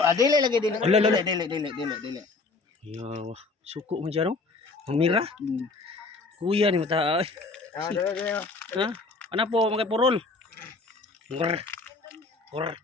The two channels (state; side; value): quieter; right; 3.8 dB